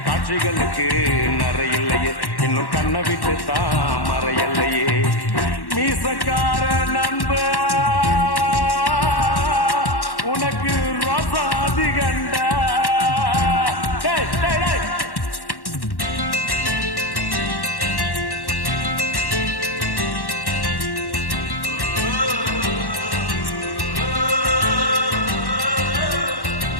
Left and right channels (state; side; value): late; right; 1.1 ms